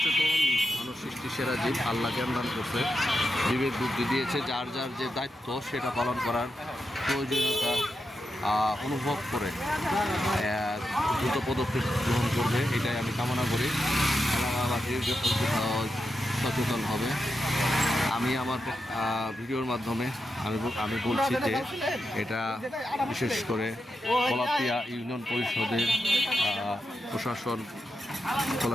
মানুষ সৃষ্টি সেরা জীব, আল্লাহ জ্ঞান দান করছে, বিবেক বুদ্ধি দিয়েছে, যার যার যে দায়িত্ব সেটা পালন করার প্রয়োজনীয়তা অনুভব করে দ্রুত পদক্ষেপ গ্রহণ করবে, এটাই আমি কামনা করি। এলাকাবাসী সচেতন হবে। আমি আমার ভিডিওর মাধ্যমে আমি বলছি যে এটা বিশেষ করে কলাতিয়া ইউনিয়ন পরিষদের প্রশাসন,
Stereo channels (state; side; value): normal; both; correlation 0.88